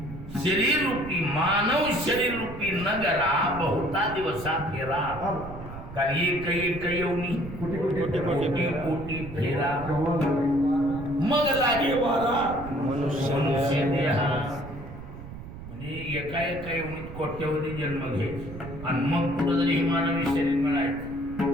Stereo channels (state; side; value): noise; right; rumble, 12 dB below the sound